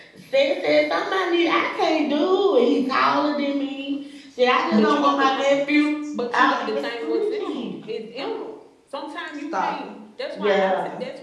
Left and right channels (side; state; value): both; identical; correlation 1.00